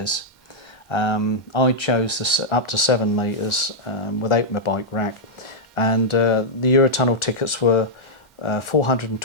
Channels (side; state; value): both; normal; correlation -0.07